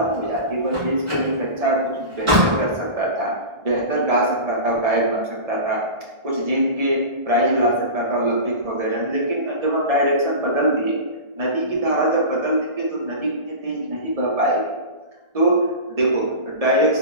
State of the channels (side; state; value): left; late; 1.4 ms